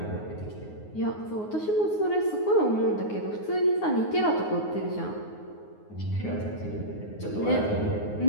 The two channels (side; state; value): right; late; 9.5 ms